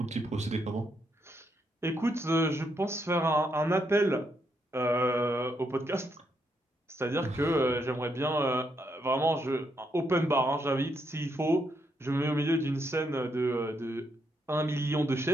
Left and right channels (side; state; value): both; normal; correlation 0.78